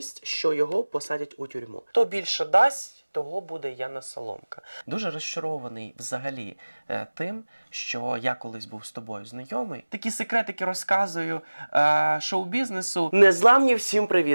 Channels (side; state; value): both; inverted; correlation -1.00